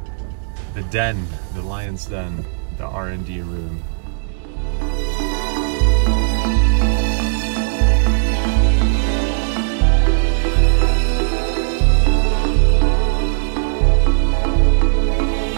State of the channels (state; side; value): silent; left; digital silence